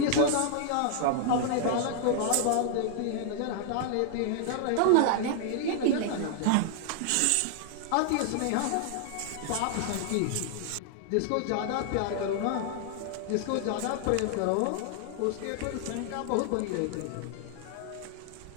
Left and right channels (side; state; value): both; different; correlation 0.00